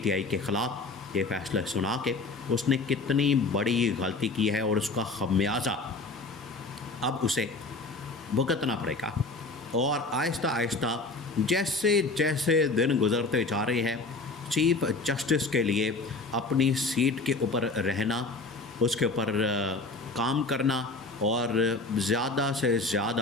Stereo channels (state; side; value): quieter; right; 3.5 dB